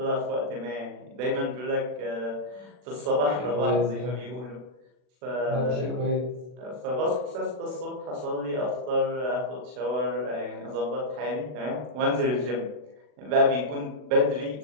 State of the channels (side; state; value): left; late; 40 ms